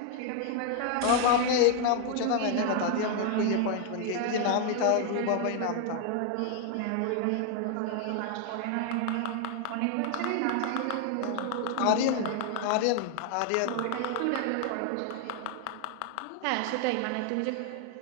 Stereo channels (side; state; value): both; different; correlation 0.00